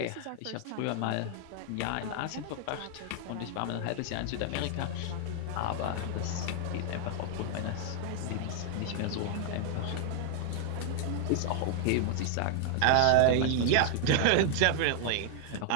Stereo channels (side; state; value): both; different; correlation 0.00